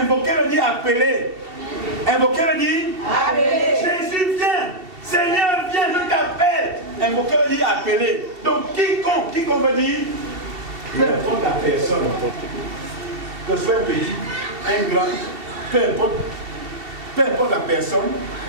veut dire appeler. Invoquer veut dire appeler. Jésus vient. Seigneur vient, je t'appelle. Invoquer veut dire appeler. Donc quiconque veut dire peu importe la personne. Que ce soit un petit, un grand, peu importe la personne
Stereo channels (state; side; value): late; left; 2.7 ms